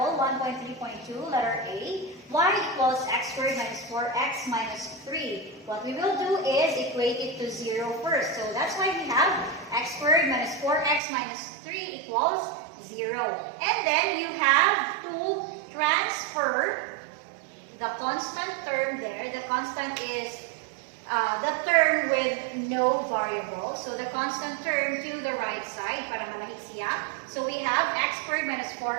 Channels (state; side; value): drops out; left; at 11.0 s